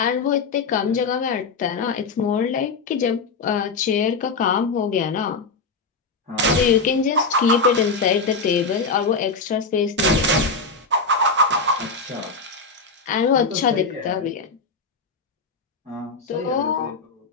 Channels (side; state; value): right; quieter; 4.2 dB